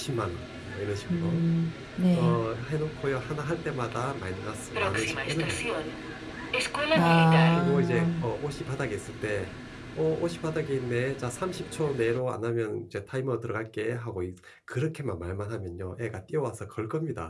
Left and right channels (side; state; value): both; identical; correlation 1.00